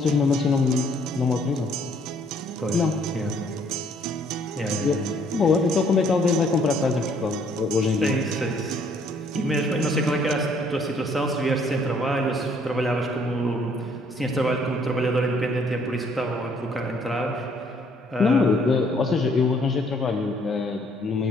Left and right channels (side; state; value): both; normal; correlation 0.63